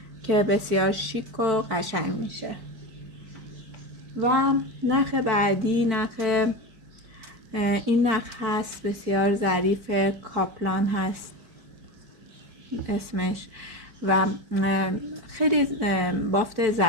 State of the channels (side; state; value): left; late; 4.5 ms